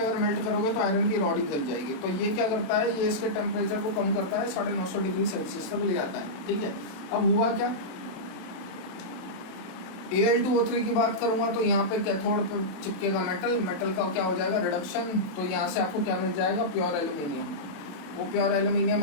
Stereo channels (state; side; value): late; right; 27 ms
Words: अगर मेल्ट करोगे तो आयरन की रॉड ही जल जाएगी। तो ये क्या करता है, ये इसके टेम्परेचर को कम करता है, 950 डिग्री सेल्सियस तक ले आता है। ठीक है, अब हुआ क्या, Al2O3 की बात करूंगा तो यहाँ पे कैथोड पे चिपकेगा मेटल, मेटल का क्या हो जाएगा रिडक्शन, तो यहाँ से आपको क्या मिल जाएगा प्योर एल्यूमिनियम। वो प्योर